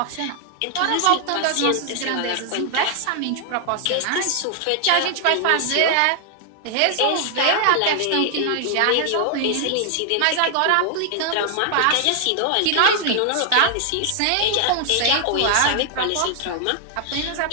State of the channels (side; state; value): both; different; correlation 0.00